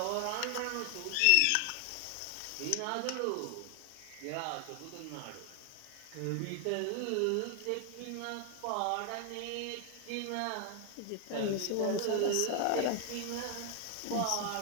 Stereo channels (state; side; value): different; both; correlation 0.00